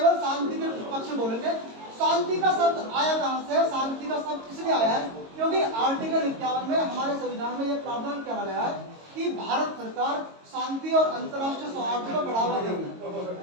शांति के पक्ष में बोलेंगे। शांति का शब्द आया कहां से? शांति का शब्द इसलिए आया है क्योंकि आर्टिकल 51 में हमारे संविधान में यह प्रावधान किया गया है कि भारत सरकार शांति और अंतर्राष्ट्रीय सौहार्द को बढ़ावा देगी।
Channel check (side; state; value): left; late; 22 ms